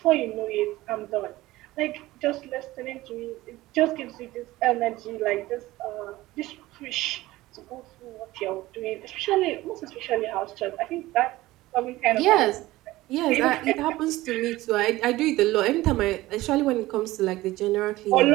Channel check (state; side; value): quieter; left; 17.8 dB